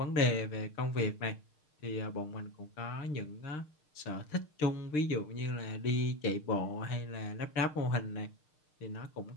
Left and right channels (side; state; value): right; late; 6.6 ms